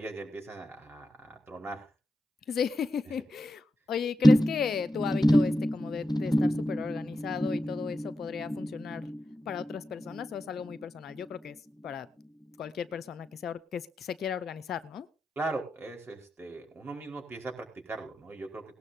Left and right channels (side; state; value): both; normal; correlation 0.89